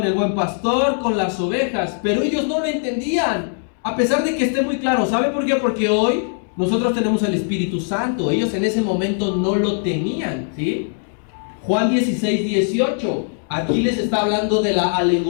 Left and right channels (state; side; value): silent; right; 60 dB below the other